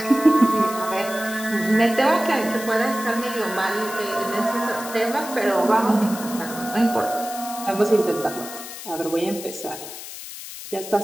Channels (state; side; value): noise; left; hiss, 11 dB below the sound